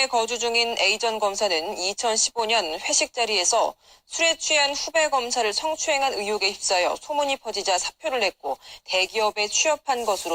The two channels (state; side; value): identical; both; correlation 1.00